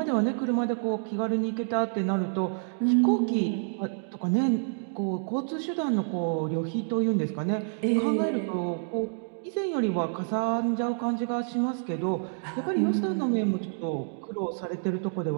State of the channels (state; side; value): silent; left; digital silence